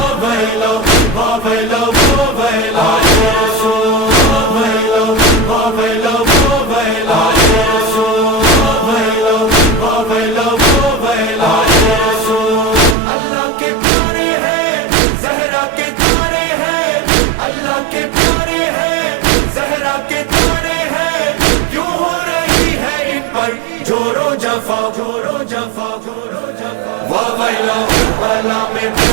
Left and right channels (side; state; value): left; drops out; at 13.0 s